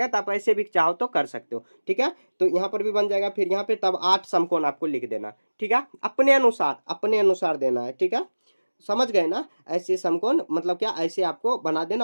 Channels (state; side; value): inverted; both; correlation -1.00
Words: तो आप ऐसे भी चाहो तो कर सकते हो, ठीक है? तो यहाँ पर भी बन जाएगा, फिर यहाँ पे तब 8 समकोण आपको लिख देना, ठीक है? अपने अनुसार देना है, ठीक है? समझ गए ना? ऐसे समकोण मतलब क्या, ऐसे आपको बना